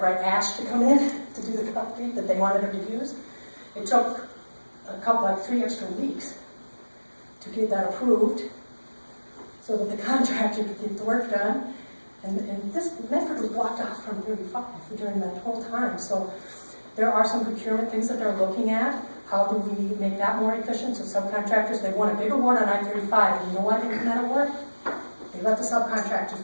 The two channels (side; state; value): both; inverted; correlation -1.00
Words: ash to come in to do the concrete that they wanted them to use. It took like 3 extra weeks to get that approved so that the contractor could get the work done. And this Medford was blocked off from 35 during that whole time. So there are some procurement things that they're looking at. How do we make that more efficient? So subcontractors, they want a big award on I-35, and you know why they won that award? They let the subcontractors